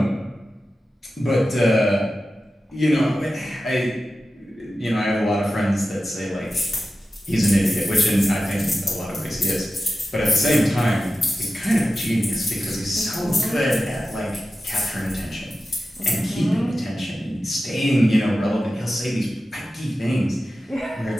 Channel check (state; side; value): normal; both; correlation 0.93